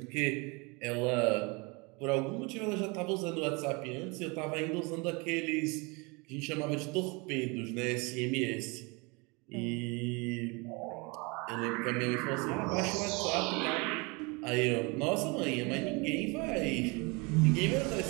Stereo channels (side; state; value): left; quieter; 28.5 dB